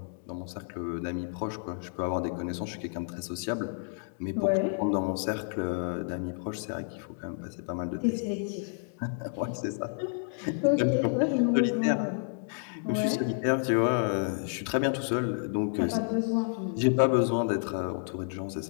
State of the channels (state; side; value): silent; right; digital silence